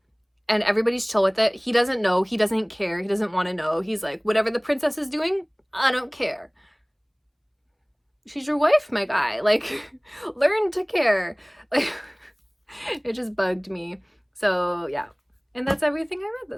and everybody's chill with it. He doesn't know. He doesn't care. He doesn't want to know. He's like, whatever the princess is doing, I don't care. She's your wife, my guy. Like, learn to care. Like, it just bugged me. So, yeah. And that's everything I read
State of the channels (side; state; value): both; identical; correlation 1.00